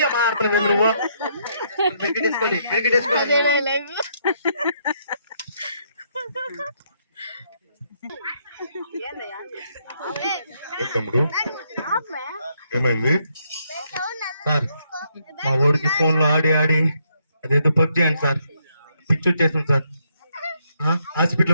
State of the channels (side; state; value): both; inverted; correlation -0.74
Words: మాట్లాడలేదు నువ్వు. తమ్ముడు ఏమైంది సార్? మా ఊరికి ఫోన్ లో ఆడి ఆడి అదేదో పబ్జీ అండి సార్, పిచ్చి వచ్చేసింది సార్.